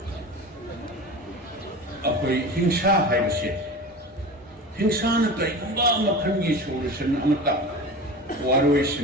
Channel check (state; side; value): normal; both; correlation 0.32